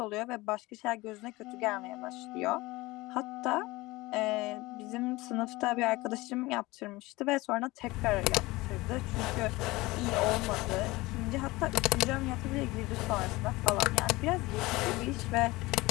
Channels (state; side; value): quieter; right; 20.8 dB